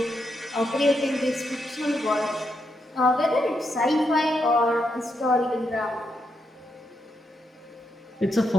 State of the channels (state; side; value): normal; both; correlation 0.81